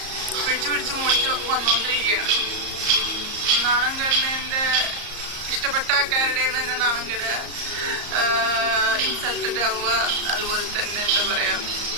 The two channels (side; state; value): left; late; 34 ms